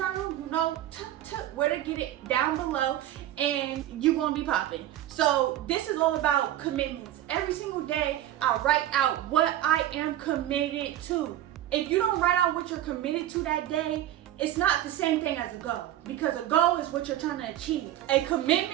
you know where to get it down below, and you're gonna be popping. So this is all about commitments. Every single day I write out what I am committed to. If you don't write out what you're committed to that day, it's not the same thing as a goal, because a goal is what you're trying to achieve. A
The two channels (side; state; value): left; quieter; 13.1 dB